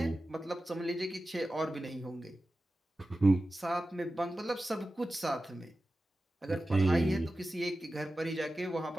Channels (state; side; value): normal; both; correlation 0.94